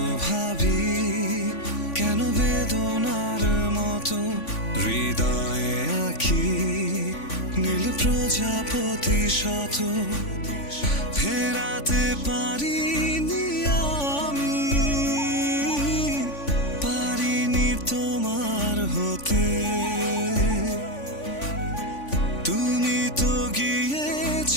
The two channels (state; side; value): late; right; 3.5 ms